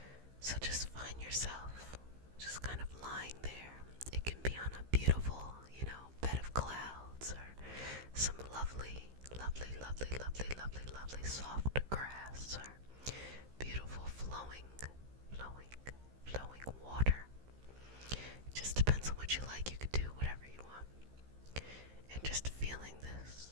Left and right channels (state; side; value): late; left; 15 ms